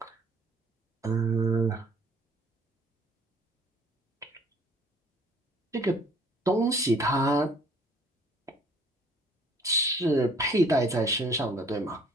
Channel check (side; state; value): both; normal; correlation 0.56